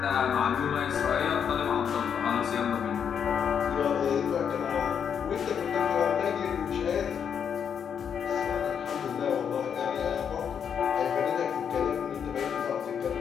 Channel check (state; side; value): quieter; right; 7.7 dB